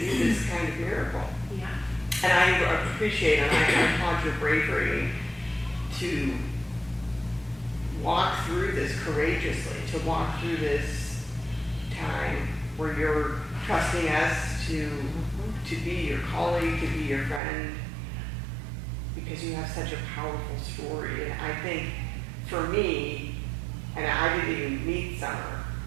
this kind of miracle. Yeah. And I appreciate and I applaud your bravery to walk through this courageously, to walk through this time where you're trusting us to be your colleague, to be your friend, because you have such a powerful story. And I think for me, and I didn't even meet Summer,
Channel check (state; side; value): drops out; left; at 17.4 s